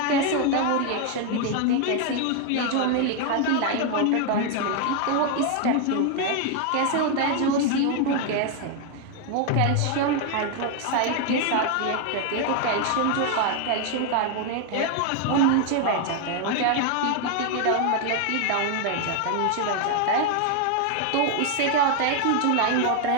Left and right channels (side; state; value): both; different; correlation 0.01